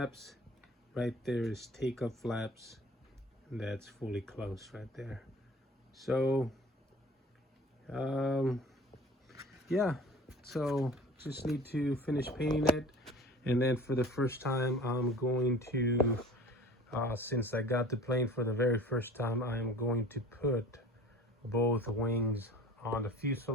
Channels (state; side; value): normal; both; correlation 0.44